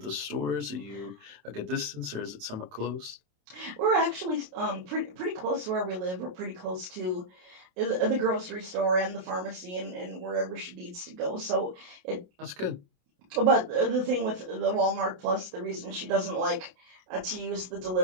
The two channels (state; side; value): late; left; 27 ms